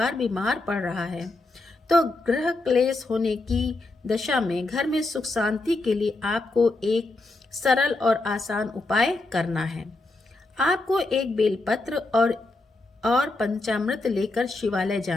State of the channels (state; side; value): quieter; right; 3.0 dB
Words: बीमार पड़ रहा है, तो ग्रह क्लेश होने की दशा में घर में सुख शांति के लिए आपको एक सरल और आसान उपाय करना है। आपको एक बेलपत्र और पंचामृत लेकर शिवालय